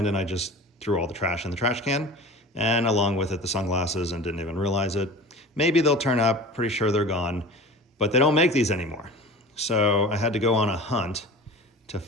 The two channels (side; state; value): both; normal; correlation 0.37